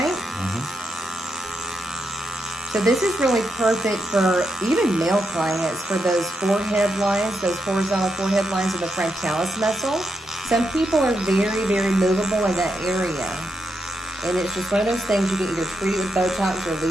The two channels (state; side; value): normal; both; correlation 0.83